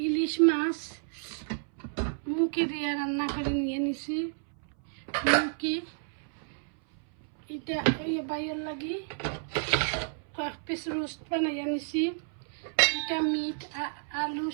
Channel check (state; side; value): silent; left; 57 dB below the other